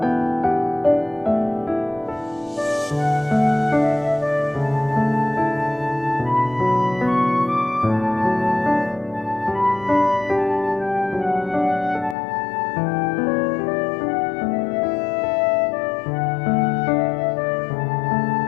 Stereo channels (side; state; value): right; drops out; at 12.2 s